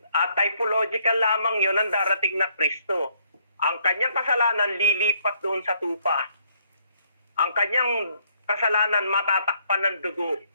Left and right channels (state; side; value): inverted; both; correlation -0.68